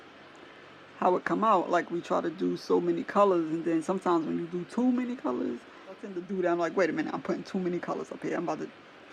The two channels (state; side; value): identical; both; correlation 1.00